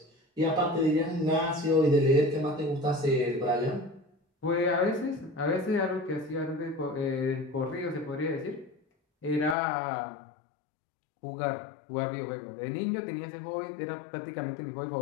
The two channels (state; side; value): drops out; right; at 9.6 s